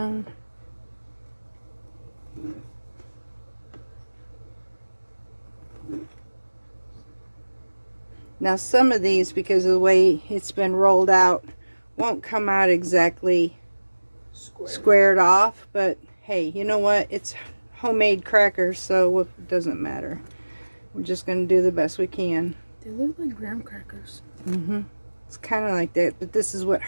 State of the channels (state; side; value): inverted; both; correlation -1.00